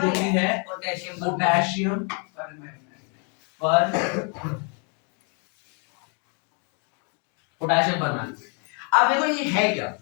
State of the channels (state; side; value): quieter; right; 37.5 dB